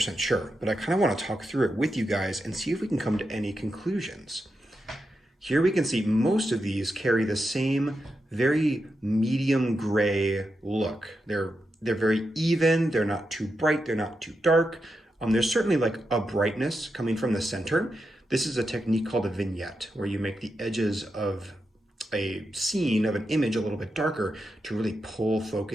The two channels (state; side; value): normal; both; correlation 0.87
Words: sure, but I kind of want to talk through it with you guys and see if we can come to any conclusions. Here we can see most of these carry the same very medium gray look. They're They're very even, they're not too bright, they're not too dark. There's certainly like a brightness coming from the center. This is a technique called a vignette, where you make the edges of a scene, of an image, a little bit darker to really pull